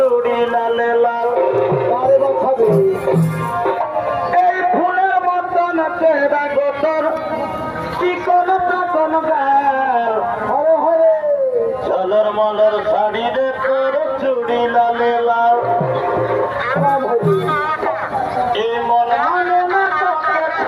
লালে লাল এই ফুলের মতন চেহারা গোতর কি কোন তখন গাল চলর মলর শাড়ি রে তোর চুড়ি লালে লাল এই মন মানে না তোকে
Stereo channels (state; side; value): identical; both; correlation 1.00